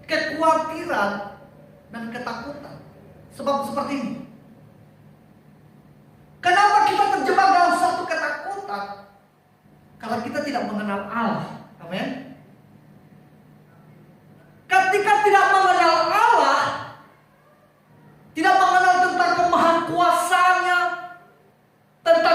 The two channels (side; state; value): both; identical; correlation 1.00